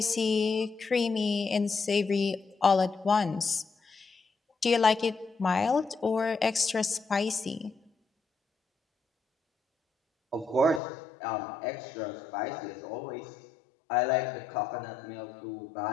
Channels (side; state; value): right; drops out; at 10.8 s